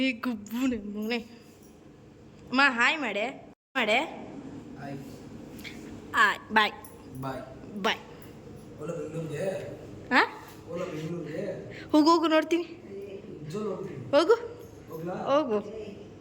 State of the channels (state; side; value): identical; both; correlation 1.00